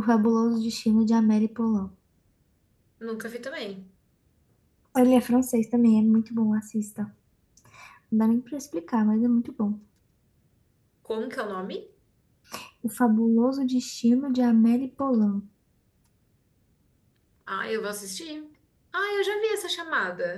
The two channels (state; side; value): identical; both; correlation 1.00